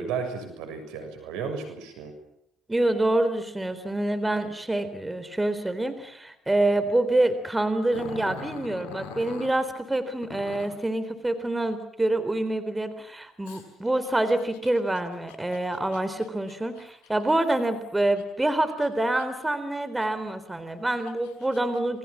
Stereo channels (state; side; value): normal; both; correlation 0.92